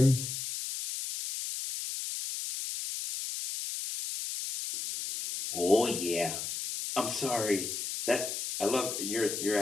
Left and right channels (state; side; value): noise; left; hiss, 5 dB below the sound